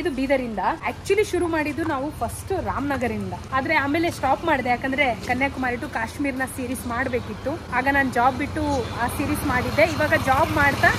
ಬೀದರಿಂದ. ಆಕ್ಚುಲಿ ಶುರು ಮಾಡಿದ್ದು ನಾವು ಫಸ್ಟ್ ರಾಮನಗರಿಂದ, ಆದ್ರೆ ಆಮೇಲೆ ಸ್ಟಾಪ್ ಮಾಡಿದೆ. ಯಾಕಂದ್ರೆ ಕನ್ಯಾಕುಮಾರಿ ಟು ಕಾಶ್ಮೀರ್ನ ಸೀರೀಸ್ ಮಾಡ್ಬೇಕಿತ್ತು. ಆಗ ನಾನು ಜಾಬ್ ಬಿಟ್ಟು ಆ ಸೀರೀಸ್ ಮಾಡಿದ್ದೆ. ಇವಾಗ ಜಾಬ್ ಮಾಡ್ತಾ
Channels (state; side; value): identical; both; correlation 1.00